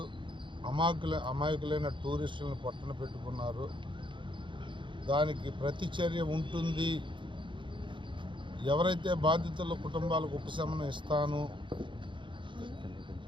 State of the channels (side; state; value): left; late; 0.24 ms